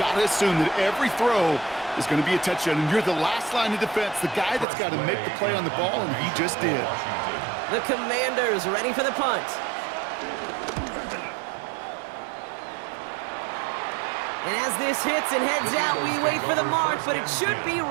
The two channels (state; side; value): drops out; left; at 4.7 s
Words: got to assume that every throw is going to be a touchdown, and you're the last line of defense, the guy that's got to make the play on the ball, and he just did. The Commanders ready for the punt. And as this hits and heads out, we wait for the mark, but it should be